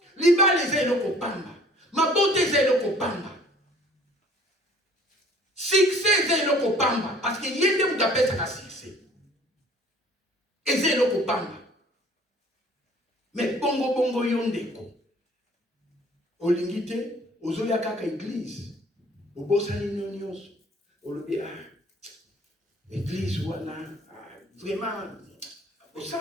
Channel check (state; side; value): normal; both; correlation 0.53